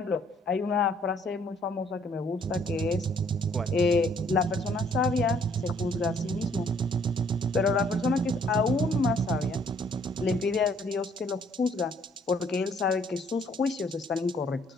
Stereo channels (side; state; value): both; normal; correlation 0.63